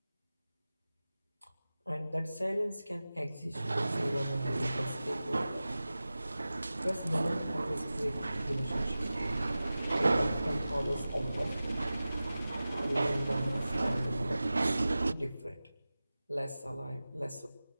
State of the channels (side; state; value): both; inverted; correlation -0.96